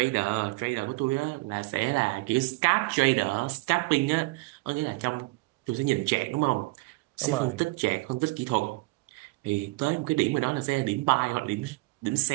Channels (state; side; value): quieter; left; 24.0 dB